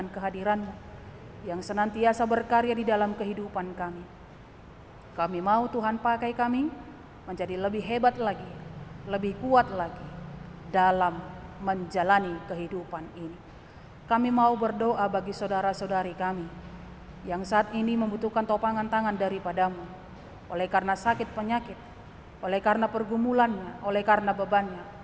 kehadiran-Mu yang senantiasa berkarya di dalam kehidupan kami. Kami mau Tuhan pakai kami menjadi lebih hebat lagi, lebih kuat lagi dalam menjalani kehidupan ini. Kami mau berdoa bagi saudara-saudari kami yang saat ini membutuhkan topangan tangan daripada-Mu, oleh karena sakit penyakit, oleh karena pergumulannya, oleh karena bebannya,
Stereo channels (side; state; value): both; identical; correlation 1.00